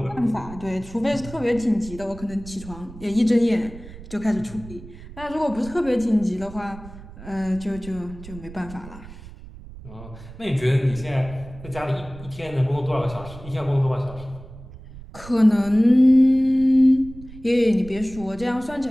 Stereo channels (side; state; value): right; noise; rumble, 16 dB below the sound